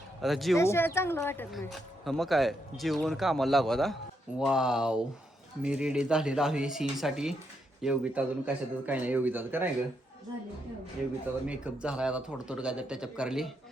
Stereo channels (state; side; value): normal; both; correlation 0.79